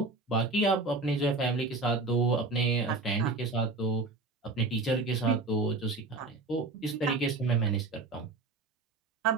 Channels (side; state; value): left; quieter; 3.5 dB